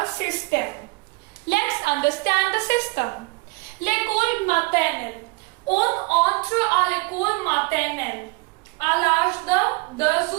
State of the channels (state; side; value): quieter; left; 25.8 dB